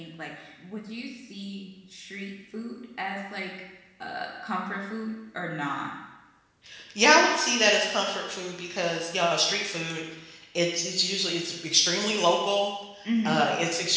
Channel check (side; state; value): both; identical; correlation 1.00